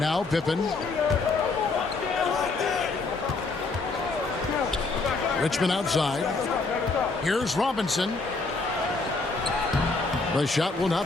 Pippen. Richmond outside. Here's Robinson. The shot will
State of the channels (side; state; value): right; quieter; 3.8 dB